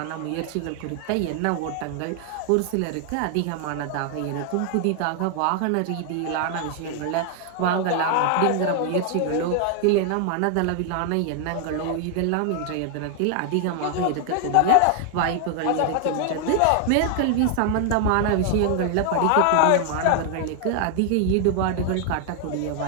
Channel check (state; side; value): different; both; correlation 0.00